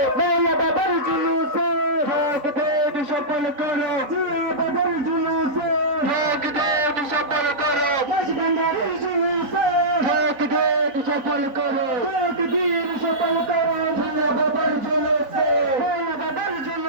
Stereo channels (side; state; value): left; late; 4.0 ms